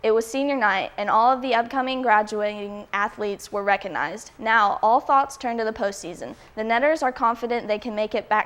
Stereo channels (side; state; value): both; identical; correlation 1.00